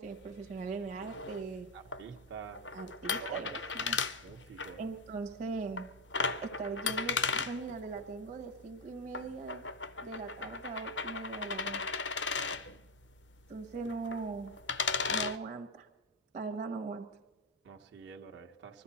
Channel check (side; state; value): both; normal; correlation 0.07